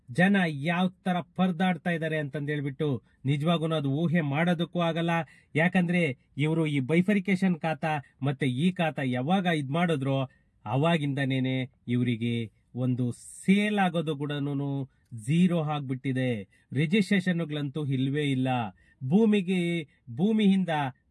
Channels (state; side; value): identical; both; correlation 1.00